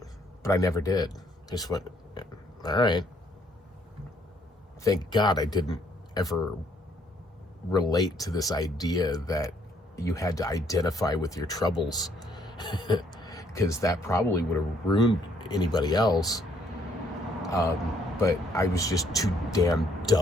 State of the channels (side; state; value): both; normal; correlation 0.67